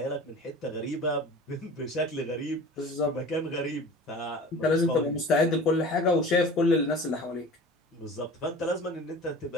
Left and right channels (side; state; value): both; normal; correlation 0.40